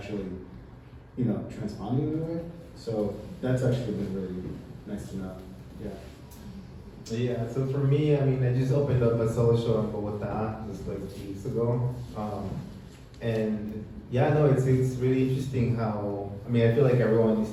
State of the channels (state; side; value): identical; both; correlation 1.00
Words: transponding in a way. So that's actually been really nice to know. Yeah. Yeah, so for me, I mean, I just opened up a solo show in Bogota just like 2 weeks ago. And yeah, no, it's really interesting how, I mean, I feel like everyone needs